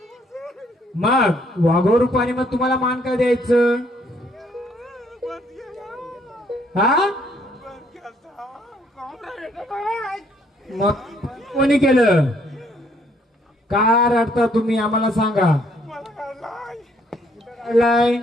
मग वाघो रूपाने मग तुम्हाला मान काय द्यायचं? हा मग कोणी केलं? का रडता तुम्ही? आम्हाला सांगा. काढलाय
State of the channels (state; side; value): normal; both; correlation 0.67